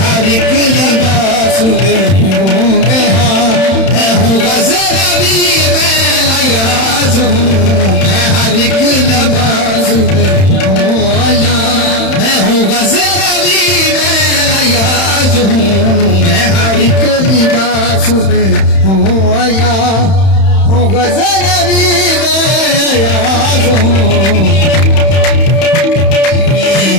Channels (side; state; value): right; late; 31 ms